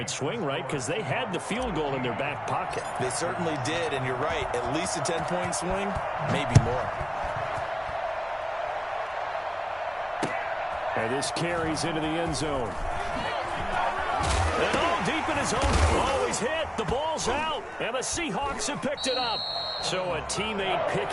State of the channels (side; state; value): both; identical; correlation 1.00